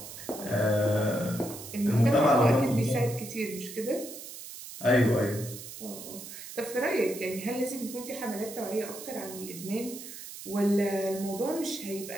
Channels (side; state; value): right; noise; hiss, 12 dB below the sound